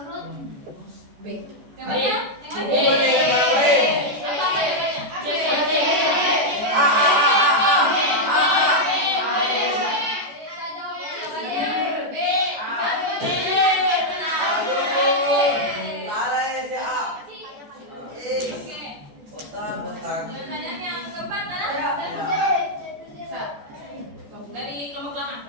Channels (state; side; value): late; left; 14 ms